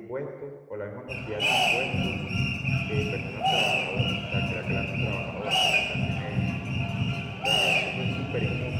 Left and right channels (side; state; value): both; identical; correlation 1.00